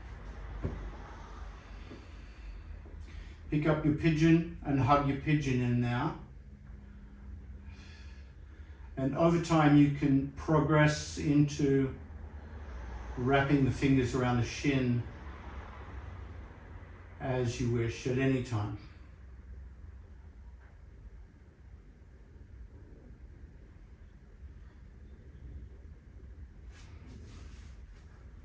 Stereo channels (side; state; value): both; identical; correlation 1.00